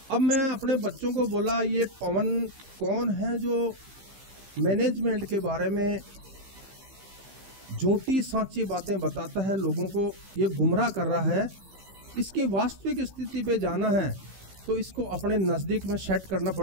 अब मैं अपने बच्चों को बोला, ये पवन कौन है जो मैनेजमेंट के बारे में झूठी सांची बातें बताता है, लोगों को ये गुमराह कर रहा है। इसकी वास्तविक स्थिति पे जाना है तो इसको अपने नज़दीक में सेट करना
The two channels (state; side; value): late; left; 15 ms